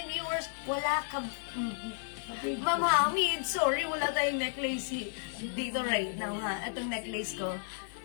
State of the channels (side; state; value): right; silent; digital silence